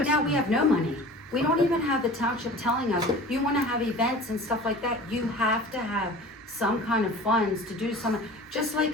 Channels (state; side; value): normal; both; correlation 0.41